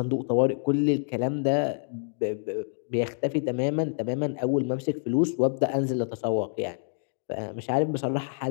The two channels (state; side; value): silent; right; digital silence